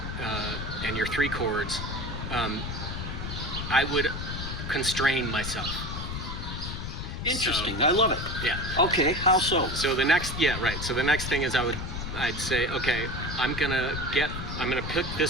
your 3 chords. I would constrain myself. Interesting. So, I love it. yeah. Okay. How so? So the next thing is I'd say, okay, I'm gonna pick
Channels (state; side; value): noise; left; rumble, 5 dB below the sound